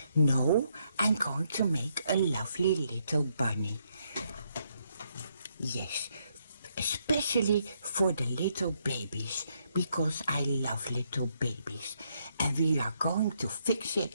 No, I'm going to make a lovely little bunny. Yes, especially for the little babies, because I love little babies. And we are going to fix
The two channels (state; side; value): inverted; both; correlation -0.75